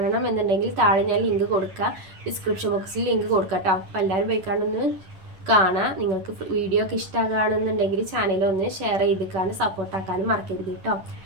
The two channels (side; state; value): left; late; 10 ms